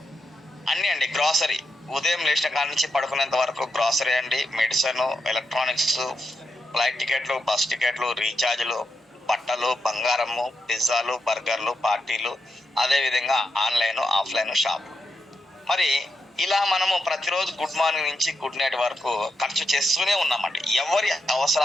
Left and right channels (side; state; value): both; normal; correlation 0.85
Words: అన్నీ అండి గ్రాసరీ. ఉదయం లేచిన కాడ నుంచి పడుకునేంత వరకు గ్రాసరీ అండి, మెడిసిన్, ఎలక్ట్రానిక్స్, ఫ్లైట్ టికెట్లు, బస్ టికెట్లు, రీఛార్జ్లు, బట్టలు, బంగారము, పిజ్జాలు, బర్గర్లు, పార్టీలు, అదేవిధంగా ఆన్లైన్, ఆఫ్లైన్ షాప్. మరి ఇలా మనము ప్రతిరోజు గుడ్ మార్నింగ్ నుంచి గుడ్ నైట్ వరకు ఖర్చు చేస్తూనే ఉన్నామండి. ఎవరి